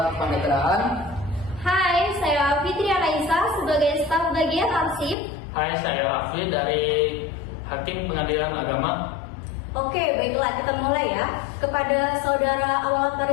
panitiaan. Hai, saya Fitri Alaisa sebagai staf bagian arsip. Hai, saya Rafli dari Hakim Pengadilan Agama. Oke, baiklah kita mulai ya. Kepada saudara Awal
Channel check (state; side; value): drops out; right; at 5.2 s